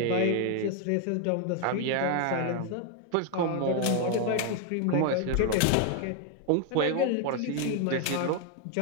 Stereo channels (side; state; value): both; different; correlation 0.01